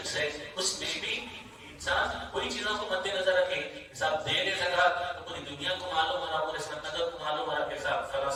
ہے اس میں بھی انسان کوئی چیزوں کو مد نظر رکھے. صاحب دے دے زکات تو پوری دنیا کو معلوم ہو رہا پورے سمندر کو معلوم ہو رہا کہ صاحب فلاں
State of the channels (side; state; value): both; identical; correlation 1.00